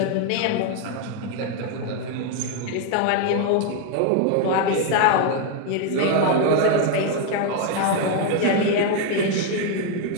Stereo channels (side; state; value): both; different; correlation 0.01